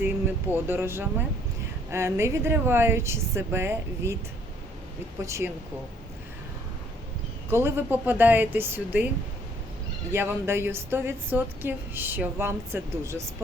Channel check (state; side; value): normal; both; correlation 0.63